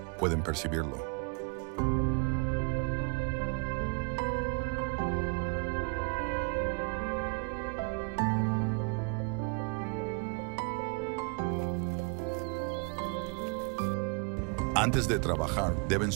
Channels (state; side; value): quieter; left; 35.3 dB